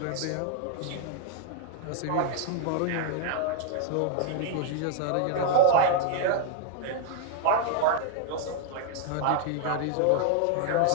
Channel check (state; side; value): different; both; correlation 0.00